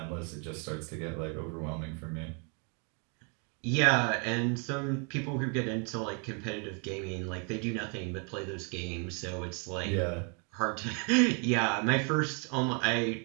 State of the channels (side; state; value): left; quieter; 37.2 dB